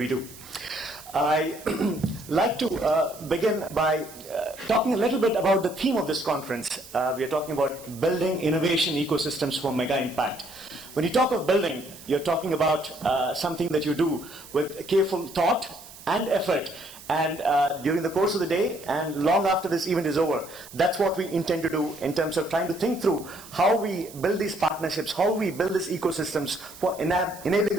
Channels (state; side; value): noise; right; hiss, 18 dB below the sound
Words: do. I like to begin by talking a little bit about the theme of this conference. We are talking about building innovation ecosystems for mega impact. When you talk of building, you're talking about something that you do with careful thought and effort, and during the course of the day and long after this event is over. That's what we intend to do in terms of trying to think through how we build these partnerships, how we build these ecosystems for enabling